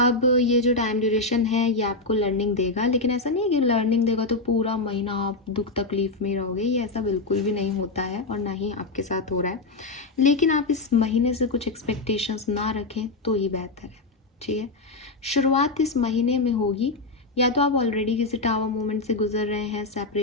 ये जो टाइम ड्यूरेशन है ये आपको लर्निंग देगा, लेकिन ऐसा नहीं है कि लर्निंग देगा तो पूरा महीना आप दुख तकलीफ में रहोगे, ये ऐसा बिल्कुल भी नहीं होता है और ना ही आपके साथ हो रहा है। लेकिन आप इस महीने से कुछ एक्सपेक्टेशंस ना रखें तो ये बेहतर है, ठीक है। शुरुआत इस महीने में होगी, या तो आप ऑलरेडी किसी टावर मोमेंट से गुजर रहे हैं,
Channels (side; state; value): right; quieter; 3.4 dB